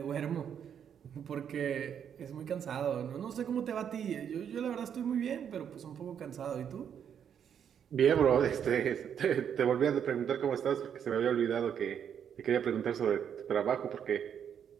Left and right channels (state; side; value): quieter; left; 8.4 dB